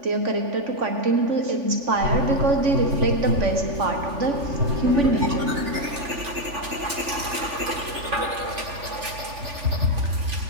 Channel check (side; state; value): left; late; 3.5 ms